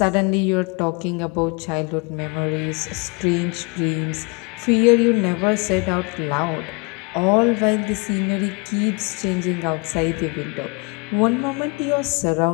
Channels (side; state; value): right; quieter; 30.6 dB